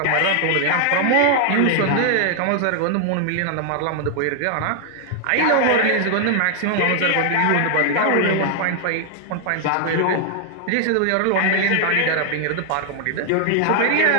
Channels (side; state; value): both; different; correlation 0.00